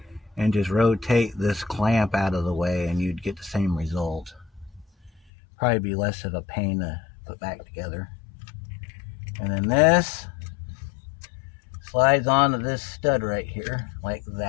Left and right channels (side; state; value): right; drops out; at 5.2 s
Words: and just rotate this clamp out of the way, and you'd get the same result. Probably be less of a pain to put back together. And then this slides onto this stud right here, like